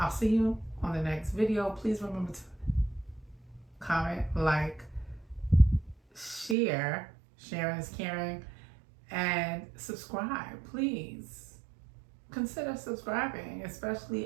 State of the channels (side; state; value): left; drops out; at 6.6 s